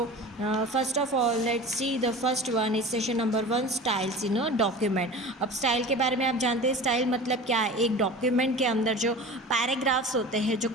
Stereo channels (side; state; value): both; normal; correlation 0.36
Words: first of all let's see the first one is session number 1 styles in a document. अब style के बारे में आप जानते हैं style मतलब क्या है। एक डॉक्यूमेंट के अंदर जो पैराग्राफ्स होते हैं, जो